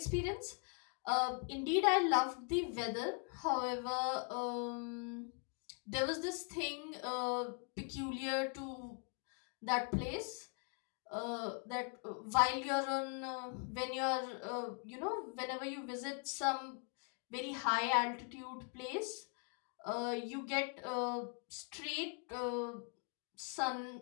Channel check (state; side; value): quieter; right; 38.5 dB